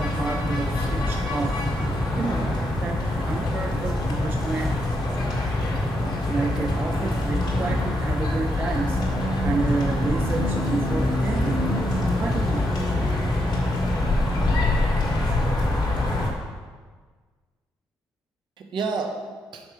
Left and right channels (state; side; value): normal; both; correlation 0.80